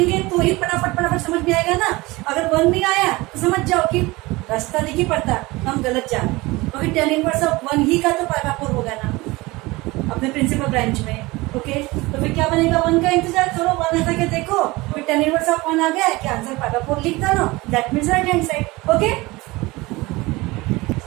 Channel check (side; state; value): left; quieter; 21.8 dB